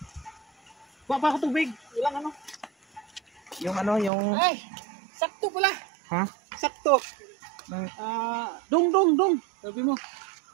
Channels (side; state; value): left; drops out; at 4.1 s